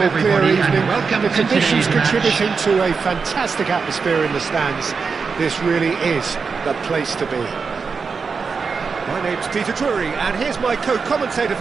clear evening. The conditions contributing to a fantastic atmosphere in the stands. This really is the place to be. My name's Peter Drury, and here's my co-commentator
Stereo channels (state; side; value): quieter; left; 5.2 dB